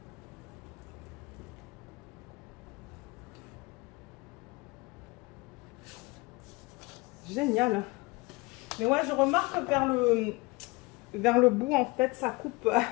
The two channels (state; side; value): quieter; right; 24.5 dB